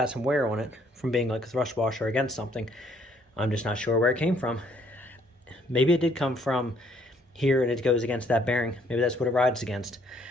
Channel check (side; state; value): both; normal; correlation 0.65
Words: some wear on it from being like a thrust washer against something. I'm just not sure where it came from. Maybe it did come from here and it goes against that bearing. Maybe that's what it rides against.